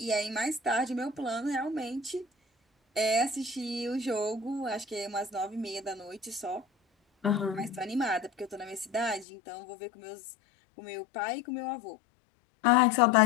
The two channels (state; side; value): drops out; right; at 9.2 s